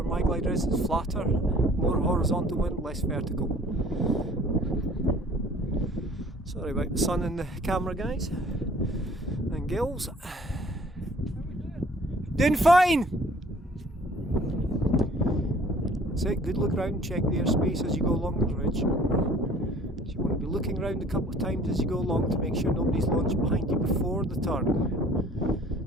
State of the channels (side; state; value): both; normal; correlation 0.53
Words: my glider is, it's flatter, more horizontal wind, less vertical. Sorry about the sun in the camera, guys and girls. Doing fine! That's it, good look round, check the airspace as you go along the ridge. So you want to be looking round a couple of times as you go along to make sure nobody's launched behind you before the turn.